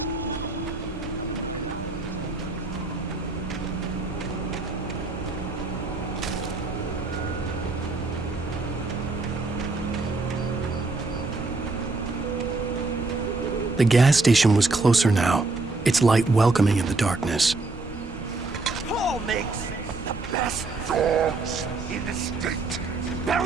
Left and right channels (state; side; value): quieter; left; 3.5 dB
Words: The gas station was closer now, its light welcoming in the darkness. Paul makes the best dogs in the state.